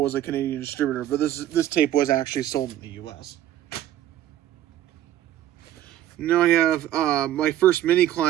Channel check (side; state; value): left; quieter; 12.6 dB